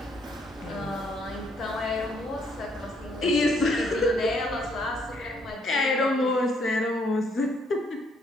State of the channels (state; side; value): normal; both; correlation 0.69